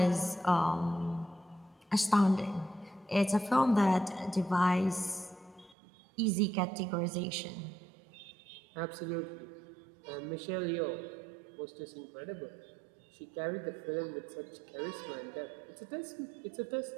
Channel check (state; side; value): drops out; left; at 5.8 s